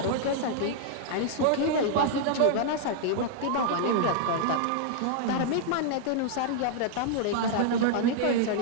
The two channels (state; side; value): different; both; correlation -0.01